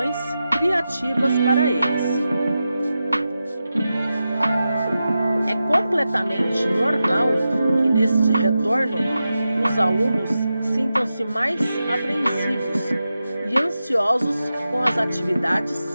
criativas para eles. É completamente normal que neste retorno os alunos sintam-se mais apreensivos e ansiosos com as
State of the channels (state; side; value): inverted; both; correlation -0.91